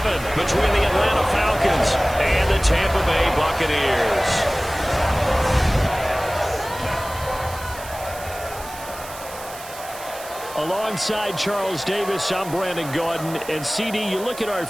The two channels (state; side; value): noise; right; hiss, 15 dB below the sound